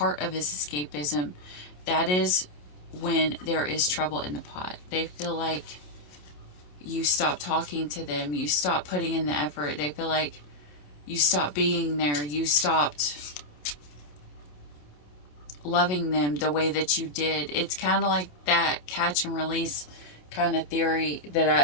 of his escapism, that is when there is trouble in the pot. They feel like you stop talking to them, you stop putting in the effort. They feel like you stopped being there, you stopped loving them the way that you did. It's kind of like that catch and release kind of theory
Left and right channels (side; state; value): right; late; 27 ms